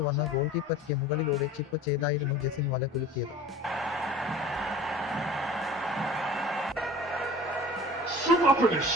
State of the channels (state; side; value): normal; both; correlation 0.42